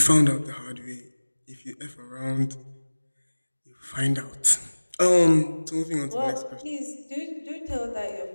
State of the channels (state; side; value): inverted; both; correlation -1.00